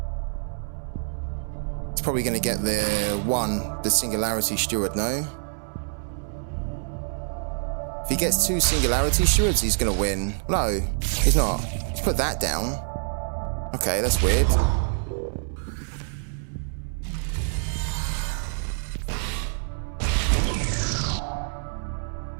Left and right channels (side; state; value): left; silent; 61 dB below the other